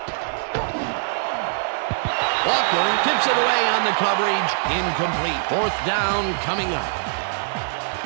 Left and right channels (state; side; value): silent; left; digital silence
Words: Walker tips it away on the coverage. Incomplete. 4th down coming up.